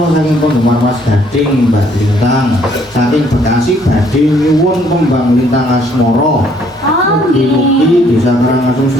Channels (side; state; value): both; normal; correlation 0.64